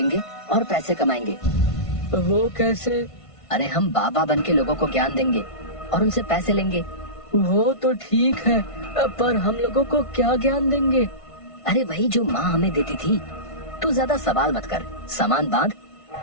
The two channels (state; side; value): late; right; 1.5 ms